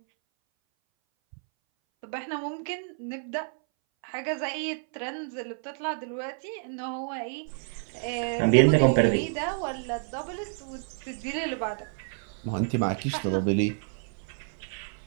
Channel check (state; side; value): silent; left; 58 dB below the other